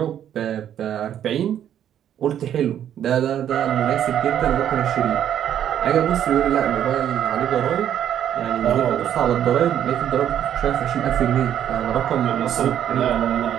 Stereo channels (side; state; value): left; quieter; 10.2 dB